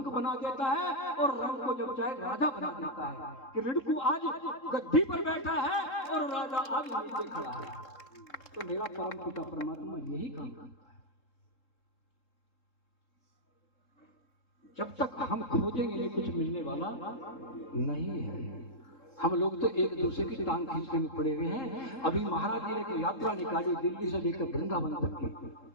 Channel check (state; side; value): late; right; 3.7 ms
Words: बना देता है और रंग को जब चाहे राजा बना देता है। कि रिड़कू आज गद्दी पर बैठा है और राजा आज नीचे खड़ा है। तो मेरा परम पिता परमात्मा यही काम करता है। जब तक हम खोजेंगे नहीं कुछ मिलने वाला नहीं है। हम लोग तो एक दूसरे की टांग खींचने में पड़े हुए हैं। अभी महाराज जी ने एक यात्रा निकाली दिल्ली से लेकर वृंदावन तक की।